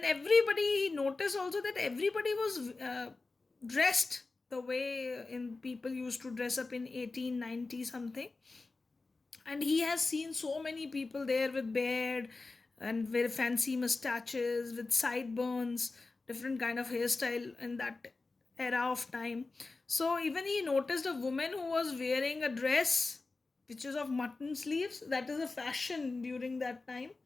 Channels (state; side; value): quieter; right; 3.7 dB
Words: everybody noticed also that everybody was dressed the way in people used to dress up in 1890 something. And he has seen so many people there with beard and very fancy mustaches with sideburns, different kind of hairstyle in that era of time. So even he noticed a woman who was wearing a dress which is of mutton sleeves. That is a fashion during that time.